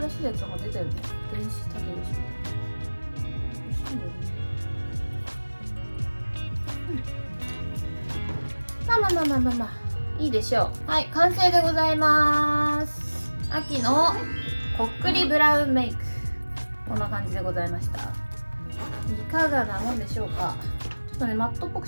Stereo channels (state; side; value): inverted; both; correlation -1.00